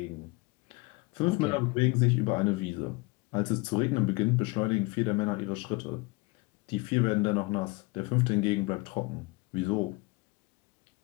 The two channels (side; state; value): right; quieter; 25.1 dB